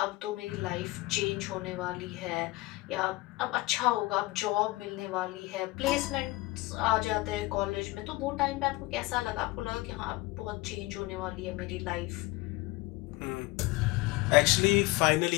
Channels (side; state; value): right; quieter; 21.1 dB